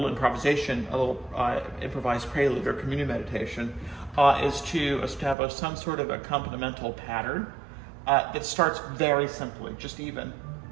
improvisation, a little improvised prelude or communion meditation, is to establish some sort of accompanimental pattern that starts very simply, just even.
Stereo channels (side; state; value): left; drops out; at 5.4 s